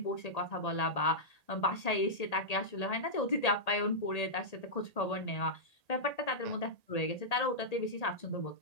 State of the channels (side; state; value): right; late; 1.8 ms